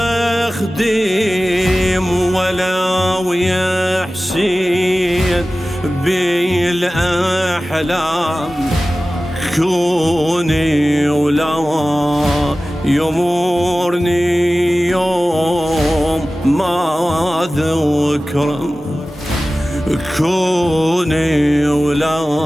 أخدم ولو يا حسين بالأحلام، كوني ولا يمورني يوم ما ذكره، كوني ولا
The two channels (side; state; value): both; normal; correlation 0.96